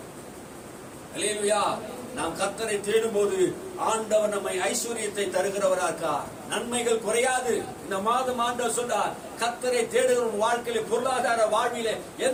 அல்லேலூயா. நாம் கர்த்தரை தேடும் போது ஆண்டவர் நம்மை ஐஸ்வர்யத்தை தருகிறவரா இருக்கார். நன்மைகள் குறையாது. இந்த மாதம் ஆண்டவர் சொல்றார், கர்த்தரை தேடுகிற வாழ்க்கையில பொருளாதார வாழ்வில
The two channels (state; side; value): identical; both; correlation 1.00